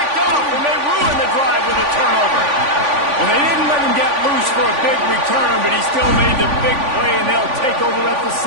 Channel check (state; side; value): late; left; 3.5 ms